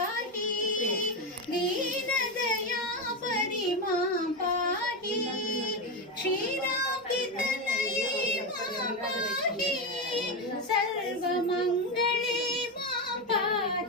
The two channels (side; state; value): both; normal; correlation 0.12